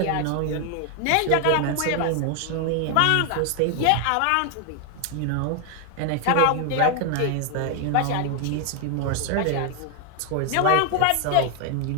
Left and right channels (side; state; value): both; different; correlation 0.00